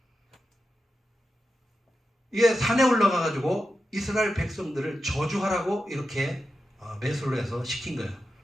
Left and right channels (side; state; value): both; normal; correlation 0.90